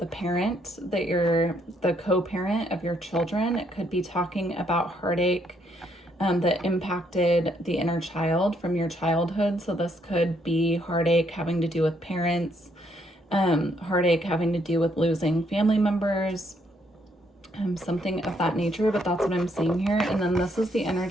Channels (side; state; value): both; normal; correlation 0.72